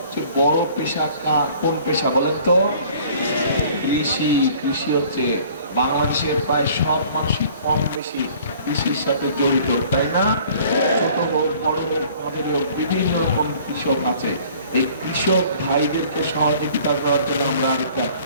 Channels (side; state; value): both; inverted; correlation -0.52